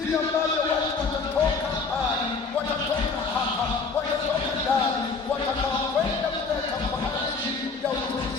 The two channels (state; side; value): quieter; right; 4.6 dB